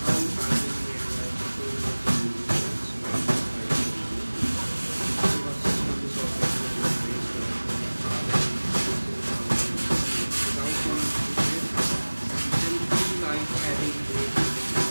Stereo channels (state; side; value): inverted; both; correlation -1.00